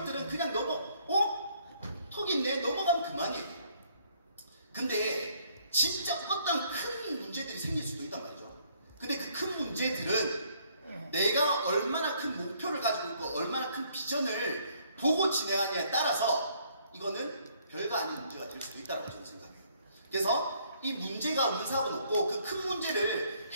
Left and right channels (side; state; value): both; inverted; correlation -0.65